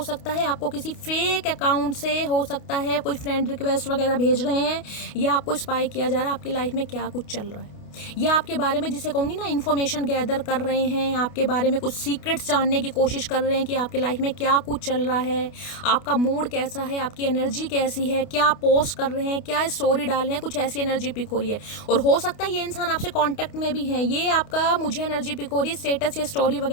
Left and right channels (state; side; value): late; right; 29 ms